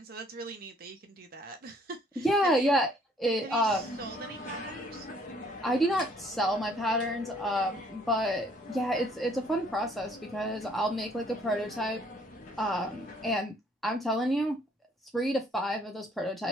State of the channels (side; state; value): both; normal; correlation 0.62